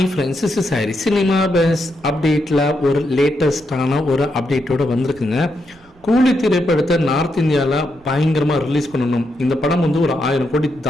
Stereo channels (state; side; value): noise; right; rumble, 29 dB below the sound